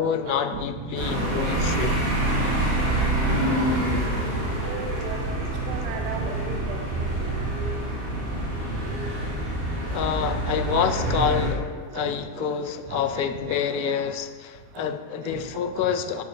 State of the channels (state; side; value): late; left; 39 ms